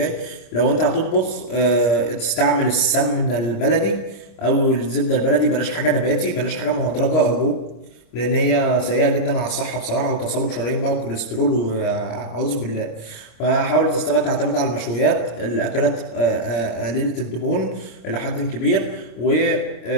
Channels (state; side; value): late; right; 26 ms